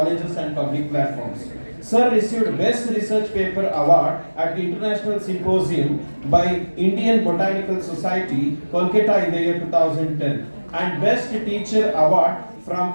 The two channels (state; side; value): inverted; both; correlation -1.00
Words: and public platforms. Sir received Best Research Paper Award at the International Symposium by Indian Botanical Society, Kolkata in the year 2010, and Best Teacher Award